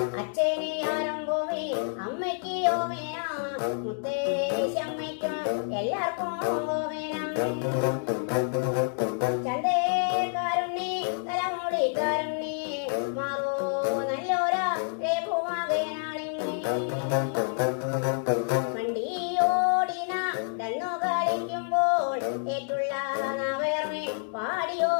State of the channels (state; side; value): silent; right; digital silence